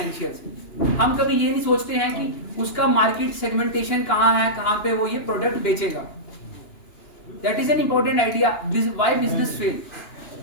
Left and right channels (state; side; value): late; right; 2.9 ms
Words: हम कभी ये नहीं सोचते हैं कि उसका मार्केट सेगमेंटेशन कहाँ है, कहाँ पे वो ये प्रोडक्ट बेचेगा. That is an important idea. Why business fail.